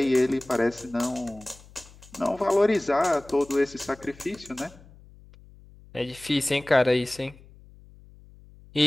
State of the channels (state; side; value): noise; left; hum, 23 dB below the sound